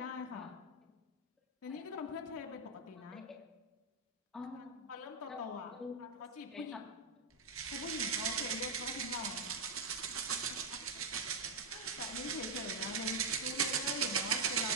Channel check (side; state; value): left; quieter; 3.3 dB